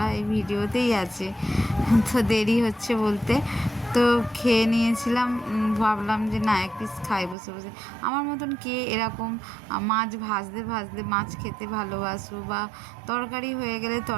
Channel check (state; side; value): drops out; left; at 7.4 s